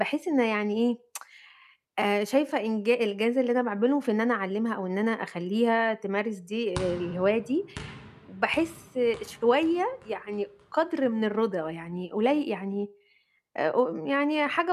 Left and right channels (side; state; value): both; identical; correlation 1.00